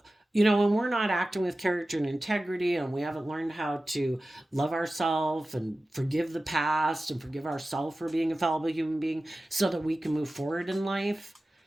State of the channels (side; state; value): both; normal; correlation 0.95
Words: when we're not acting with character and integrity and we haven't learned how to love ourselves and forgive the past and forgive ourselves for being a fallible human being so that we can move forward in life,